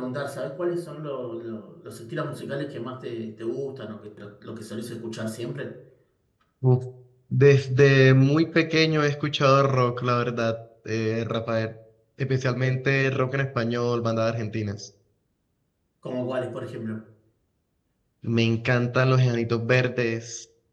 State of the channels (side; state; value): both; identical; correlation 1.00